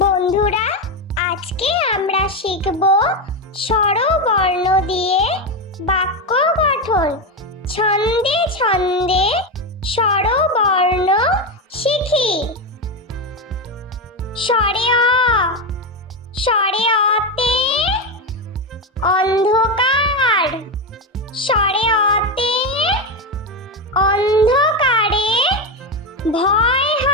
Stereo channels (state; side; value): normal; both; correlation 0.12